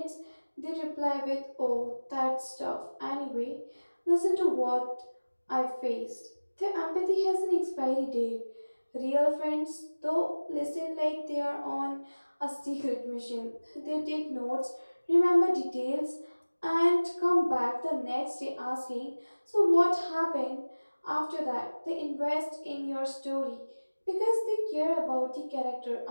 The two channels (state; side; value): inverted; both; correlation -1.00